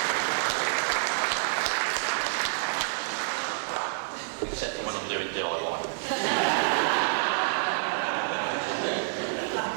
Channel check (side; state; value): left; silent; digital silence